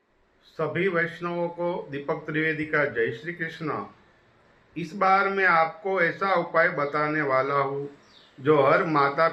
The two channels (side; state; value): both; identical; correlation 1.00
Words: वैष्णवों को दीपक त्रिवेदी का जय श्री कृष्ण। इस बार मैं आपको ऐसा उपाय बताने वाला हूँ जो हर माता